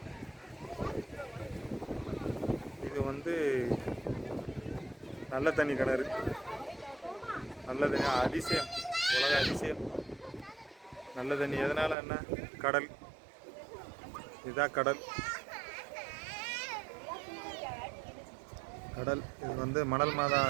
இது? வந்து நல்ல தண்ணி கிணறு, நல்ல தண்ணி அதிசயம், உலக அதிசயம் நல்ல தண்ணி. எதனால? என்ன? கடல். இதுதான் கடல். கடல் இது வந்து மணல் மாதா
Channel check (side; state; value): left; drops out; at 12.0 s